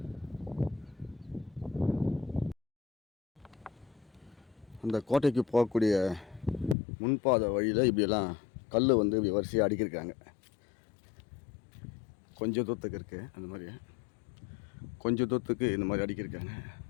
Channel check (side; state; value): right; drops out; at 6.8 s